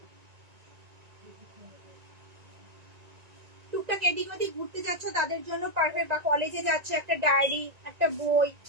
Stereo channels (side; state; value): left; late; 1.9 ms